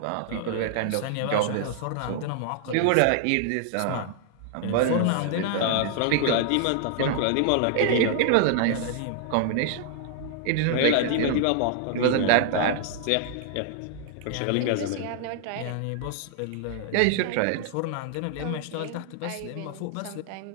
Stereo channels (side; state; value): both; different; correlation 0.00